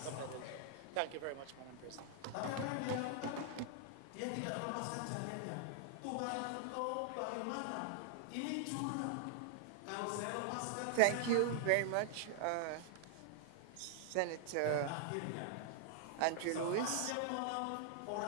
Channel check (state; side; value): different; both; correlation -0.01